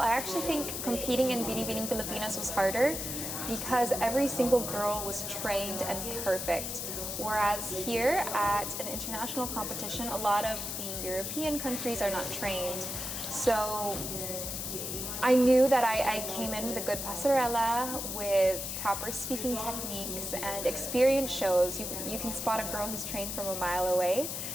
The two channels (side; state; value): left; noise; hiss, 4 dB below the sound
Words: actually think competing in Binibining Pilipinas was harder because every single girl was trained and perfect. Whereas here at an international competition, a lot of the European countries are not trained. So I knew that I came in with a good pasarela, with proper speaking techniques, and experience shows. You can spot a girl who's trained from a mile away.